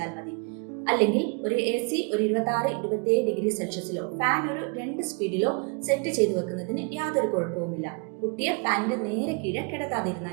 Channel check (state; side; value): quieter; left; 32.9 dB